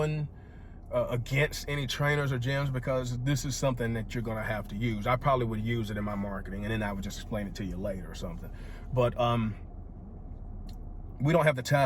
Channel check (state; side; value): identical; both; correlation 1.00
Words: against any trainers or gyms, because this is something that you're gonna have to use. I probably would use it in my marketing, and then I would just explain it to you later or something. But we don't have the